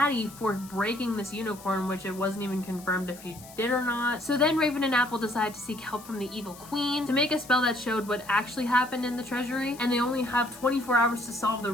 for breaking this unicorn, which it wasn't even confirmed if she did or not. So then Raven and Apple decide to seek help from the evil queen to make a spell that showed what actually happened in the treasury, and they only have 24 hours to solve the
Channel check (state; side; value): noise; left; hiss, 19 dB below the sound